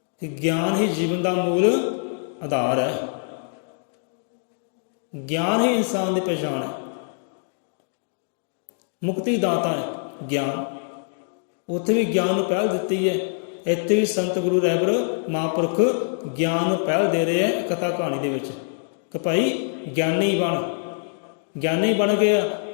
ਕਿ ਗਿਆਨ ਹੀ ਜੀਵਨ ਦਾ ਮੂਲ ਆਧਾਰ ਹੈ। ਗਿਆਨ ਹੀ ਇਨਸਾਨ ਦੀ ਪਛਾਣ ਹੈ, ਮੁਕਤੀ ਦਾਤਾ ਹੈ ਗਿਆਨ। ਉੱਥੇ ਵੀ ਗਿਆਨ ਨੂੰ ਪਹਿਲ ਦਿੱਤੀ ਹੈ, ਇੱਥੇ ਵੀ ਸੰਤ ਗੁਰੂ ਰਹਿਬਰ ਮਹਾਂਪੁਰਖ ਗਿਆਨ ਨੂੰ ਪਹਿਲ ਦੇ ਰਹੇ ਹੈ ਕਥਾ ਕਹਾਣੀ ਦੇ ਵਿੱਚ ਕਿ ਭਾਈ ਗਿਆਨੀ ਬਣ। ਗਿਆਨੀ ਬਣ ਗਿਆ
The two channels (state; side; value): silent; right; digital silence